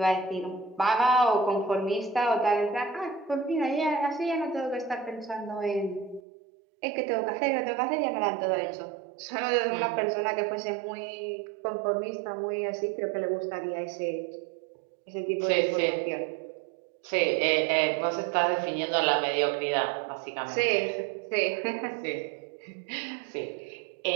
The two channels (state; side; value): drops out; left; at 6.2 s